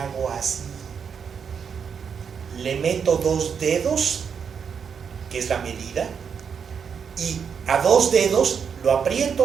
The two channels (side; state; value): left; quieter; 6.8 dB